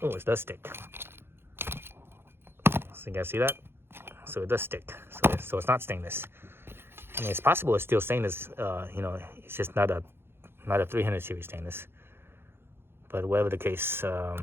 Oh, it does stick. So you guys see that? So it does stick. So it's not stainless. I mean, it's possible it's still stainless. It's just not a 300 series stainless. But whatever the case,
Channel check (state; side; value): late; left; 0.11 ms